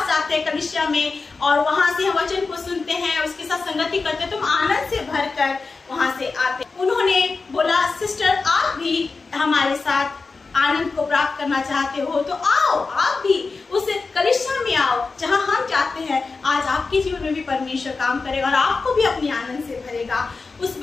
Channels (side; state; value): right; quieter; 4.2 dB